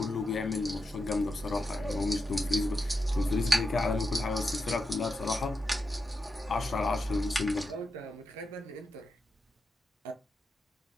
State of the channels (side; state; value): both; normal; correlation 0.87